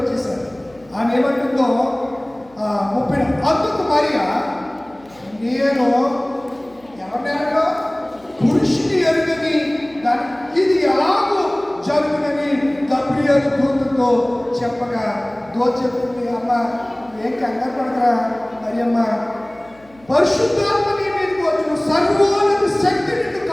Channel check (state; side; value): noise; left; hum, 29 dB below the sound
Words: ఆమె ఏమంటుందో 30. అందుకు మరియా, నేను ఎవరినో పురుషుని ఎరుగని దాని ఇది ఎలాగూ జరుగునని గాబ్రియెల్ దూతతో చెప్పగా చెప్తుంది, అమ్మ ఏం కంగారు పడకరా మరియమ్మ, పరిశుద్ధాత్మ నీ మీదకి వచ్చును, సర్వోన్నత శక్తి నిన్ను